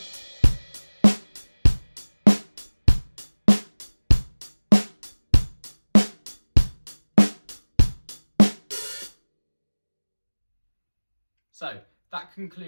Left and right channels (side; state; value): both; inverted; correlation -1.00